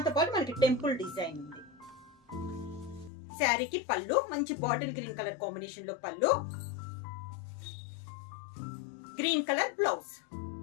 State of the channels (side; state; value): right; drops out; at 3.1 s